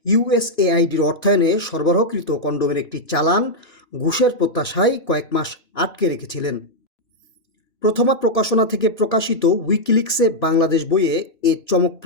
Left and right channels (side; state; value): right; late; 2.6 ms